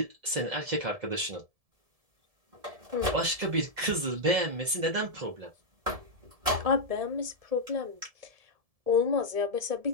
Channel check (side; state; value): left; late; 1.7 ms